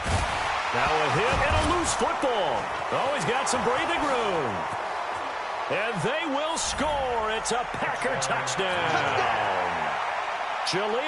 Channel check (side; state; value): both; identical; correlation 1.00